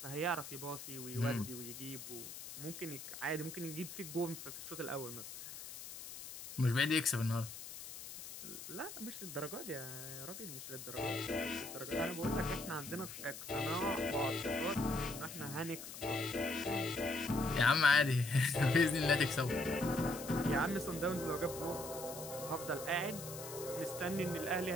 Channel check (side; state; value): left; noise; hiss, 11 dB below the sound